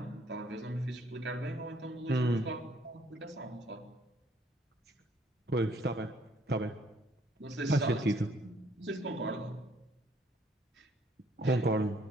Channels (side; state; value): both; normal; correlation 0.64